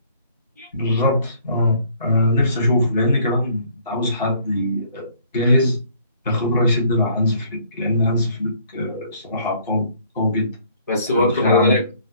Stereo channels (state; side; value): inverted; both; correlation -0.60